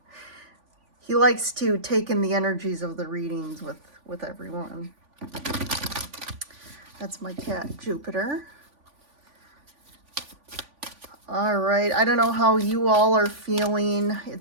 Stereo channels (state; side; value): late; left; 3.5 ms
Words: He likes to take in the energies of the readings with everyone. That's my cat, Jupiter. All right, I don't know how you all are feeling.